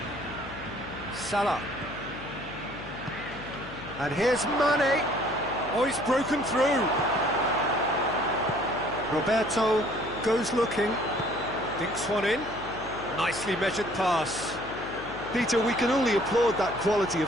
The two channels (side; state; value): left; noise; hum, 14 dB below the sound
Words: Salah. And here's Mane. Oh, he's broken through. Roberto goes looking. Dinks one in. Nicely measured pass. Peter, we can only applaud that quality